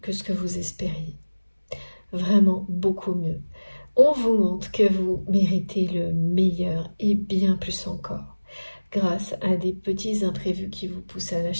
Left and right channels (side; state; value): both; inverted; correlation -1.00